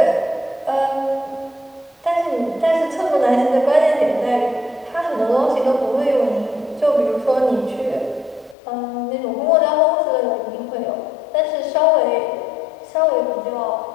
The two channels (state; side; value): drops out; right; at 8.6 s